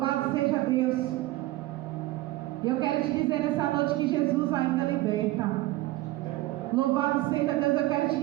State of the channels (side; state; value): left; quieter; 17.8 dB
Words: seja Deus. Eu quero te dizer nessa noite que Jesus ainda liberta. Louvado seja Deus. Eu quero te